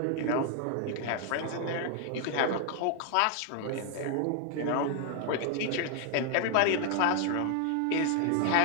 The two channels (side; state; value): both; different; correlation 0.00